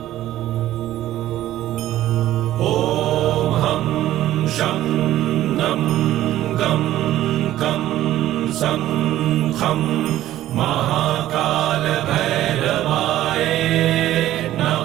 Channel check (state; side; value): quieter; left; 13.8 dB